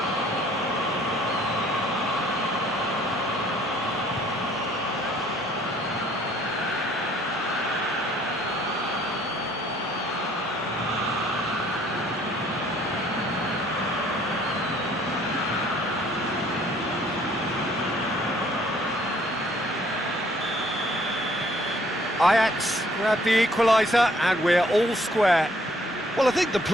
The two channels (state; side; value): normal; both; correlation 0.61